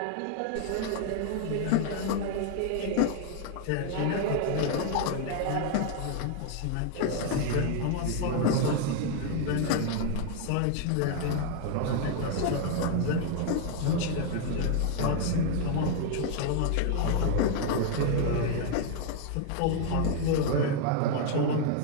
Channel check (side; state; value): both; different; correlation 0.00